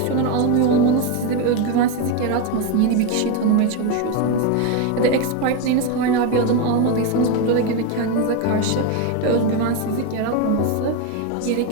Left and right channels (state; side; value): different; both; correlation 0.03